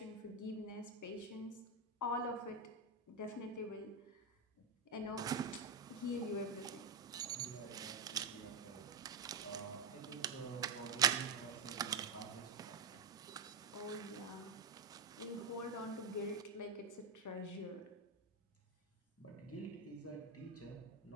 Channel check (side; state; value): left; quieter; 4.1 dB